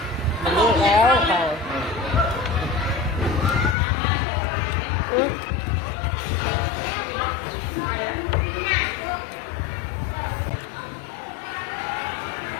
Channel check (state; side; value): drops out; right; at 3.8 s